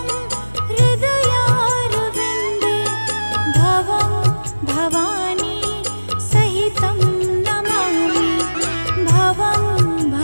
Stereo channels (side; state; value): both; inverted; correlation -1.00